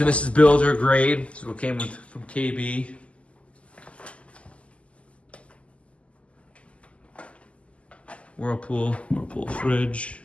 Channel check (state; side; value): late; right; 0.059 ms